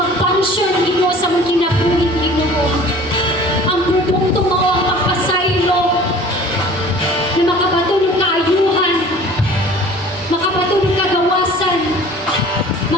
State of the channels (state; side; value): normal; both; correlation 0.46